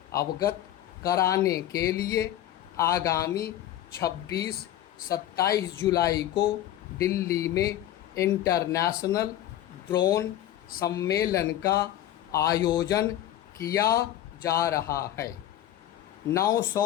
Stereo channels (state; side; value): quieter; right; 12.5 dB